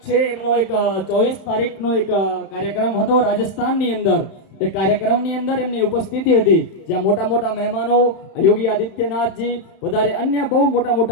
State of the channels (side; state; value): right; late; 31 ms